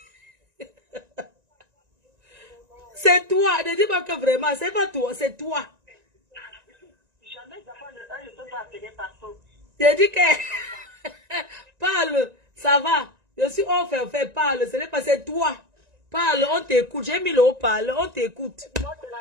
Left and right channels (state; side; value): late; left; 1.9 ms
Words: C'est toi. Ne dis pas que vraiment, c'est pas toi, c'est toi. Jamais je ne peux pas appeler partout. Je dis que... Parle, ça va. Je suis parle. Ce n'est pas, c'est toi. Parle, on t'écoute. J'ai mis le haut-parleur, on t'écoute. Moi, c'est